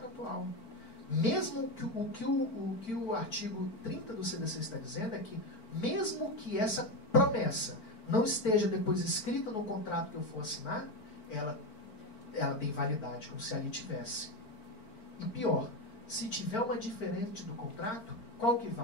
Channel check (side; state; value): right; late; 4.5 ms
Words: Mesmo que o artigo 30 do CDC está dizendo é que, mesmo que essa promessa não esteja depois escrita no contrato que eu for assinar, ela tem validade, como se ali tivesse. E pior, se tiver uma diferente do contrato, qual que